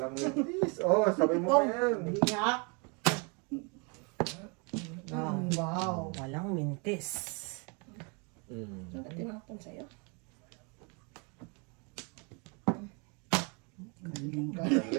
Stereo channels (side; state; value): left; quieter; 33.3 dB